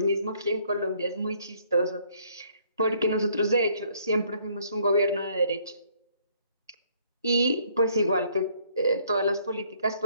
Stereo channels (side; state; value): both; inverted; correlation -0.64